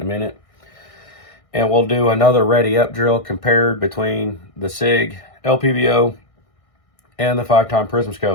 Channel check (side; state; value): right; late; 1.6 ms